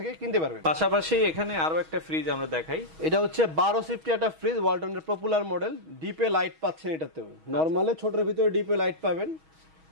কিনতে পারবেন। পাশাপাশি এখানে আরো একটা ফ্রিজ আমরা দেখাই। এটা হচ্ছে 12 সিফটি একটা ফ্রিজ, ওয়ালটনের পপুলার মডেল। ডিপে লাইট পাচ্ছেন এটাতেও, নরমালে ছোটর ভিতরে ডিপে লাইট পাবেন।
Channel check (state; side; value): late; left; 6.3 ms